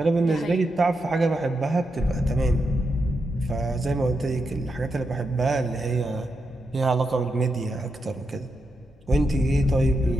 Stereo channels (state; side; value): normal; both; correlation 0.85